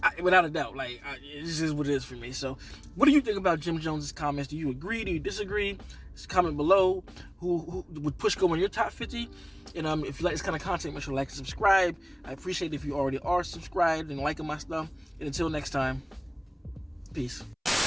Without a doubt, like this is what it is for me. So, what do you think about Jim Jones's comments? Do you agree? Do you disagree? Just comment below. Who would Push go in your top 50? And if you like this kind of content, make sure to like and subscribe. I appreciate it if you already are subscribed and liking my stuff. And until next time, peace.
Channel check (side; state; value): both; identical; correlation 1.00